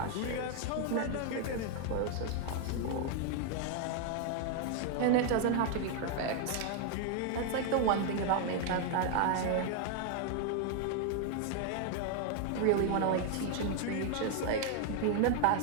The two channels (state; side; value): different; both; correlation 0.00